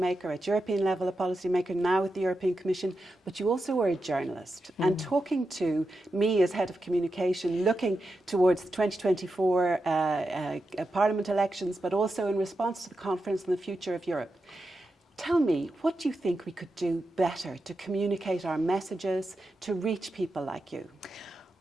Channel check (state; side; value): normal; both; correlation 0.89